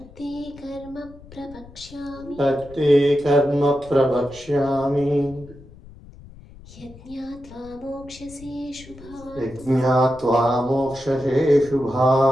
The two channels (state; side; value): noise; left; rumble, 20 dB below the sound